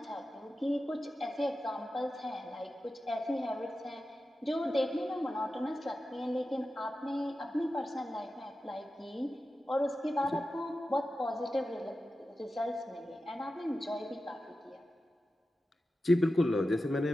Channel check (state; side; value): normal; both; correlation 0.92